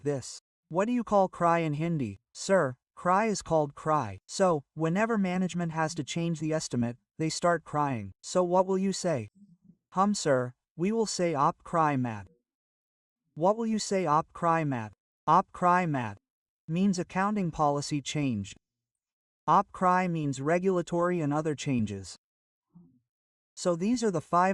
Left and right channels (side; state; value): both; identical; correlation 1.00